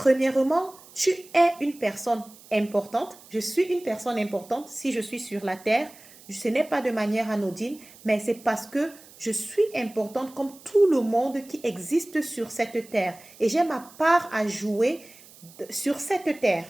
tu es une personne importante. Je suis une personne importante si je suis sur la terre. Ce n'est pas de manière anodine, mais c'est parce que je suis importante comme tout le monde qui existe sur cette terre. Et j'ai ma part à jouer sur cette terre.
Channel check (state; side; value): noise; right; hiss, 22 dB below the sound